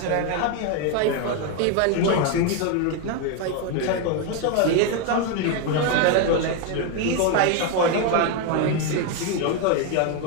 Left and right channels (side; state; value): both; different; correlation 0.01